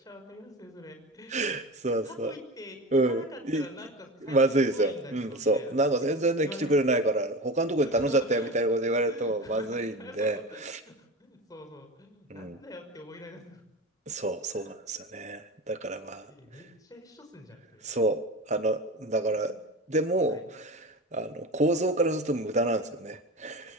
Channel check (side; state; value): both; normal; correlation 0.28